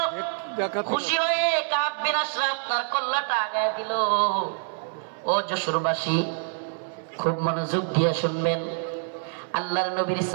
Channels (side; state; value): left; silent; 60 dB below the other